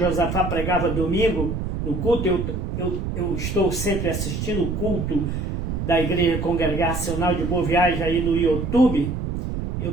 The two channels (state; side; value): noise; right; rumble, 3 dB below the sound